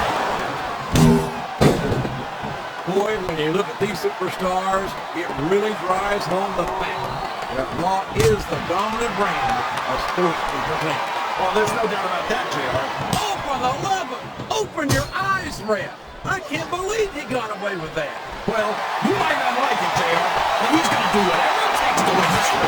Boy, when you look at these superstars, it really drives home the fact that Raw is the dominant brand of sports entertainment. Well, there's no doubt about that, JR. Oh, for the love of... Open your eyes, Ref. I can't believe he got away with that. Well, you might not like it, JR, but he's going to do whatever it takes to win this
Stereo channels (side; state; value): both; identical; correlation 1.00